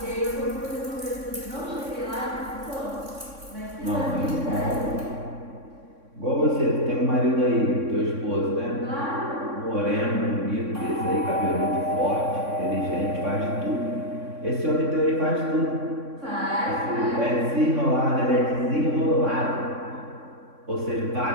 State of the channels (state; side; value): late; left; 3.6 ms